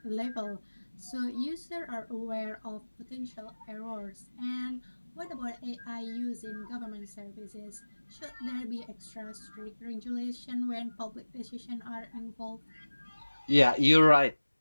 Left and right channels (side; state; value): both; inverted; correlation -1.00